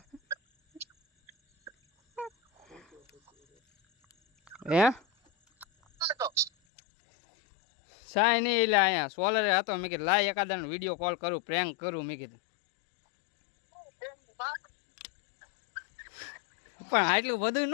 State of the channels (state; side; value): drops out; right; at 6.5 s